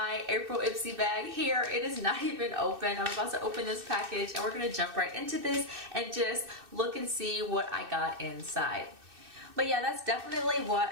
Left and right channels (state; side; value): late; left; 2.6 ms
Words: April Ipsy bag here. It is not even open. I'm about to open this package and we're gonna jump right into this and just look and see what I got inside. But yeah, that's definitely what